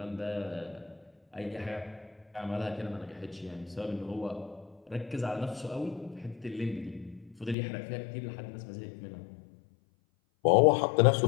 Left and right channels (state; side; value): drops out; right; at 7.6 s